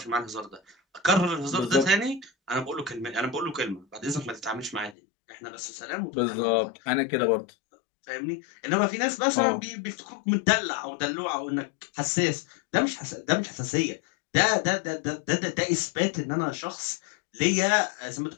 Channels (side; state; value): right; drops out; at 5.0 s